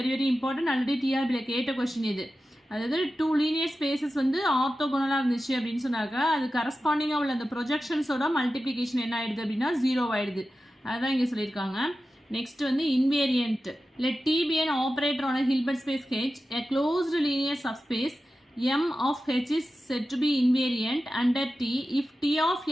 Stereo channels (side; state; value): both; normal; correlation 0.93